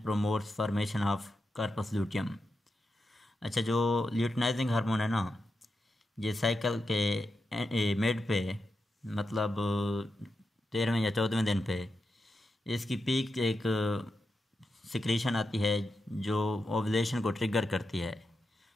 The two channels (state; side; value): normal; both; correlation 0.88